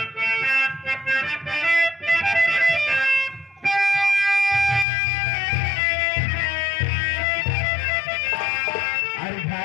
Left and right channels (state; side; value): drops out; right; at 4.9 s